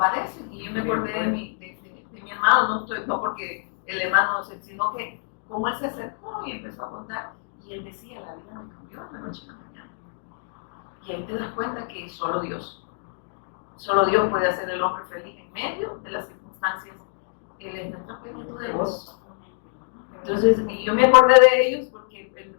Y yo me acordé de mi hermano, no porque el hermano, sino que como él se acercó y empezó a contar, y él decía, la vida me cambió de la noche a la mañana. Y ahí te das cuenta que solo Dios puede hacer el hombre feliz en medio de las circunstancias. Él es nuestra plenitud de gozo. Entonces, y yo me acordé de ellos porque el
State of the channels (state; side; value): silent; right; digital silence